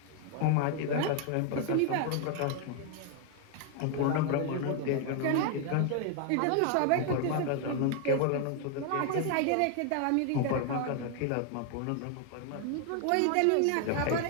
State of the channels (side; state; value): both; different; correlation 0.00